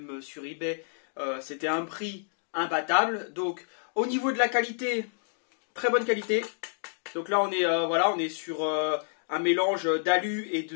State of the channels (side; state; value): right; silent; digital silence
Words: sur eBay, c'était un prix imbattable. Donc au niveau de la qualité, très bonne qualité. Donc là on est sur un mélange d'alu et